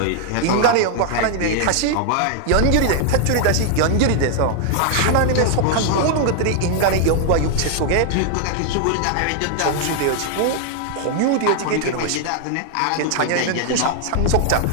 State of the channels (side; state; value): both; different; correlation 0.00